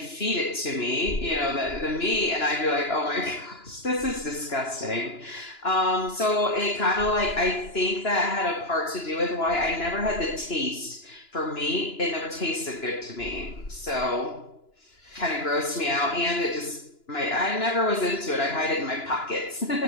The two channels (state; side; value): late; right; 2.9 ms